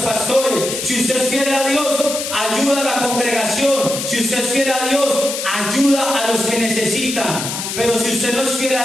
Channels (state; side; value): noise; left; hiss, 5 dB below the sound